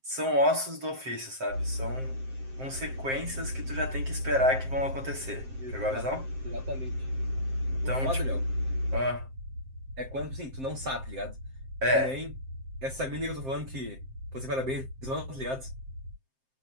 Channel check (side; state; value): left; late; 7.6 ms